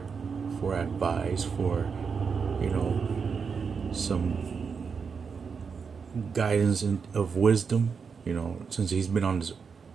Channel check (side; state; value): left; quieter; 5.8 dB